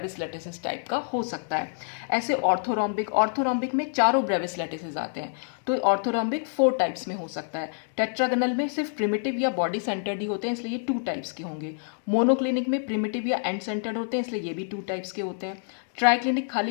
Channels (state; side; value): silent; right; digital silence